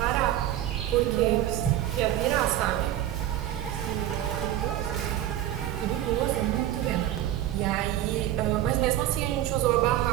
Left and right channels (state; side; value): quieter; left; 12.7 dB